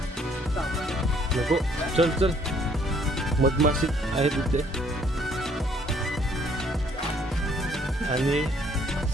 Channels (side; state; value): both; normal; correlation 0.63